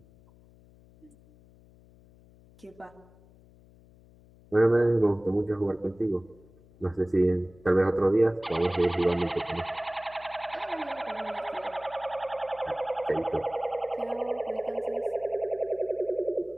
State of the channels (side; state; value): left; noise; hum, 26 dB below the sound